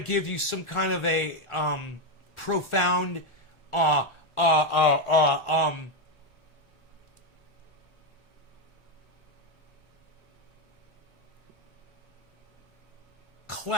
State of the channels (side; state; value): both; normal; correlation 0.06